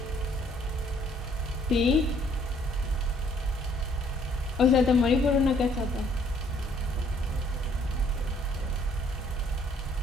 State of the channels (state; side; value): normal; both; correlation 0.63